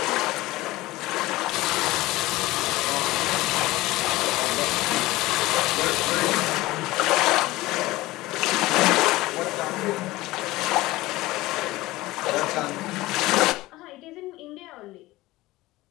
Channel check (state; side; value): quieter; right; 18.7 dB